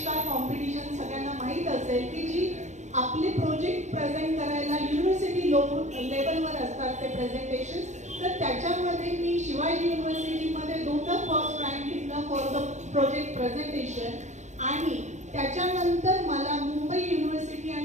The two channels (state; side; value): late; left; 0.34 ms